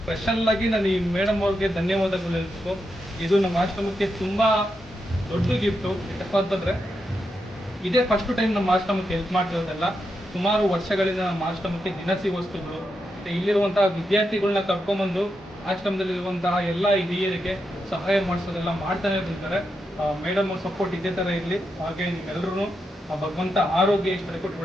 ಸ್ಪೆಷಲ್ಲಾಗಿ ನಾನು ಈ ಮೇಡಮ್ ಅವ್ರಿಗೆ ಧನ್ಯವಾದಗಳು ಹೇಳ್ಬೇಕು. ಇದು ನಮ್ಮ ಆಶ್ರಮಕ್ಕೆ ತುಂಬ ದೊಡ್ಡ ಗಿಫ್ಟು. ಯಾಕಪ್ಪ ಅಂತಂದರೆ ಇದೇ ಫಸ್ಟ್ ಟೈಮ್ ನಮ್ಮ ಆಶ್ರಮಕ್ಕೆ ಹೆಲ್ಪ್ ಮಾಡ್ತಿರೋದೆಲ್ಲ. ಸುಮಾರು ವರ್ಷಗಳಿಂದ ನಮ್ಮ ಆಶ್ರಮಕ್ಕೆ ದಿನಸಿ ವಸ್ತುಗಳು ಮತ್ತು ಇಲ್ಲಿರುವಂತಹ ವಿದ್ಯಾರ್ಥಿಗಳನ್ನ ಕರ್ಕೊಂಬಂದು ಆಶ್ರಮದಲ್ಲಿರುವಂತಹ ಎಲ್ಲ ಹಿರಿಯರಿಗೆ ಸಹಾಯ ಮಾಡಿಸೋದೆಲ್ಲ ಮಾಡ್ತಾನೆ ಇರ್ತಾರೆ. ಮೇಡಮ್ ಅವ್ರ ಸಪೋರ್ಟ್ ಇದೇ ಥರ ಇರಲಿ. ಹಾಗೆ ನಿಮ್ಮೆಲ್ಲರೂ ಭಗವಂತ ಆರೋಗ್ಯ ಇಷ್ಟ ಕೊಟ್ಟು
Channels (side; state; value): both; normal; correlation 0.85